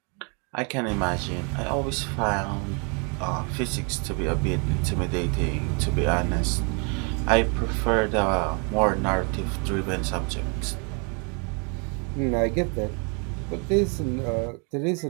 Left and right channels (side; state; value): left; quieter; 35.0 dB